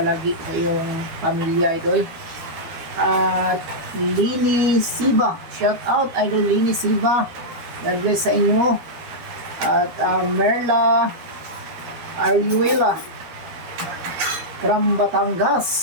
sa iyong pamilya idol. At Lini Siba, shout out idol Lini Siba. God bless sa inyo. At Merla Ariuela from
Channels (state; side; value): late; left; 13 ms